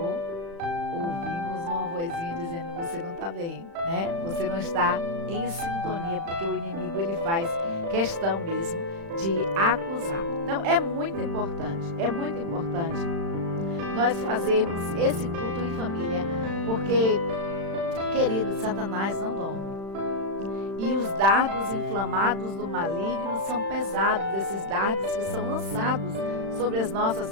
ouvimos uma vozinha dizendo: você não está bem, né? Você não está em sintonia, porque o inimigo ele faz questão mesmo de acusar. Então é muito importante nós fazermos esse culto em família, porque, queridos, Satanás não dorme. E os dardos inflamados do maligno são pesados, esses dardos que são lançados sobre as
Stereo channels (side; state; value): left; late; 36 ms